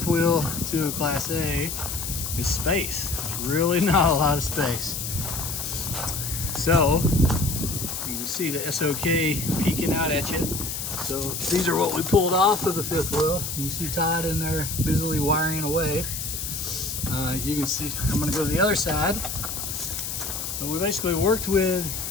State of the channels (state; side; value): noise; left; hiss, 5 dB below the sound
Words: wheel to a Class A is space. There's really not a lot of space. So, you can see the SOK peeking out at you. So these are what we pulled off of the fifth wheel. You can see Todd in there busily wiring away. You can see, I'm gonna go to the other side. But we basically worked with